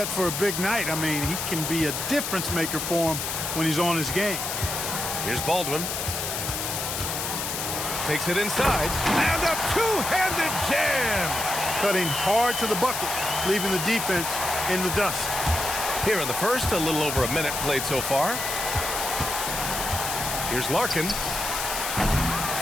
for a big night. I mean, he can be a difference maker for him when he's on his game. Here's Baldwin. Takes it inside. And a two-handed jam. Cutting hard to the bucket, leaving the defense in the dust. Here in the first, a little over a minute played so far. Here's Larkin.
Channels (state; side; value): noise; left; hiss, 3 dB below the sound